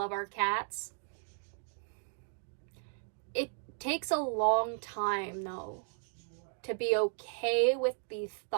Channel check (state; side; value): silent; left; 54 dB below the other